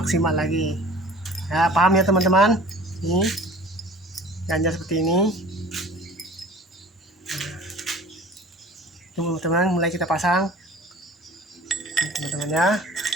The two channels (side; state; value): both; normal; correlation 0.45